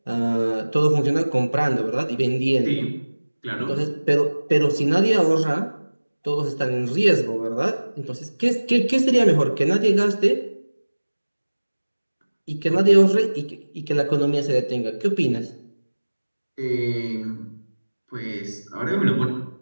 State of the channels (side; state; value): both; inverted; correlation -1.00